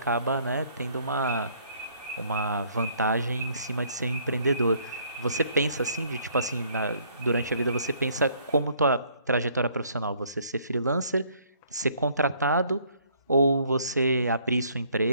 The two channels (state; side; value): inverted; both; correlation -0.63